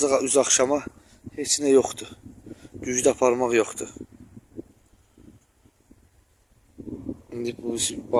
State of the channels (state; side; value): identical; both; correlation 1.00